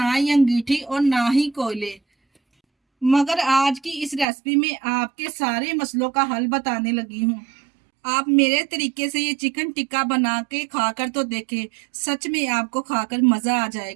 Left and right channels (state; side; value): drops out; left; at 4.2 s